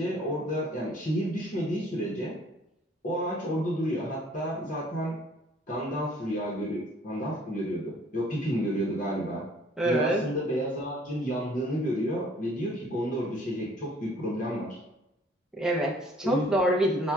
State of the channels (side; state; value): both; normal; correlation 0.57